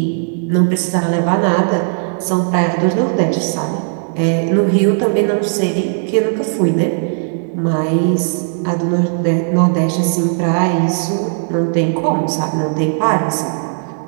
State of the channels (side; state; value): left; silent; digital silence